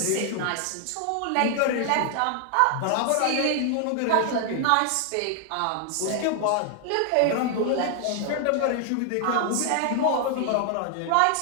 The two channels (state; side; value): different; both; correlation 0.00